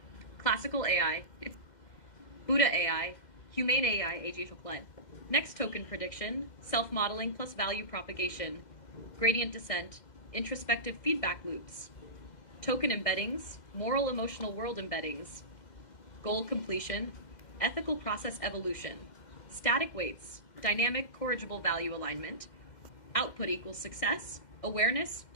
classical AI, Buddha AI, humane AI, AG chocolate. Next token prediction, self-modeling plus value propagation, gradient descent, introspective feedback loops, token embeddings, moral emotional world embeddings, goal completion, ethical process evolution, static weights, dynamic corrigible value alignment, output equals success, awareness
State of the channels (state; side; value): late; right; 2.1 ms